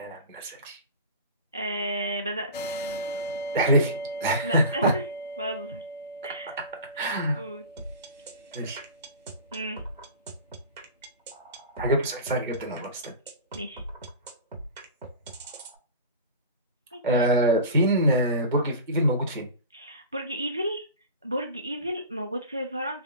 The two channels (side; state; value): both; inverted; correlation -0.33